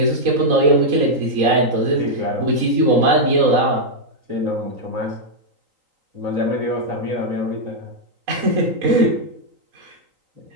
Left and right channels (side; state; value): left; late; 3.8 ms